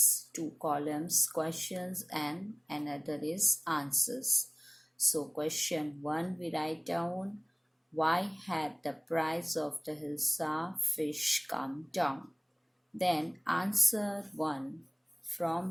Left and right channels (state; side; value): identical; both; correlation 1.00